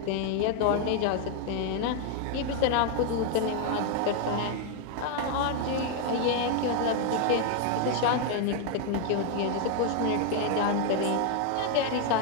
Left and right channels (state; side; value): different; both; correlation 0.01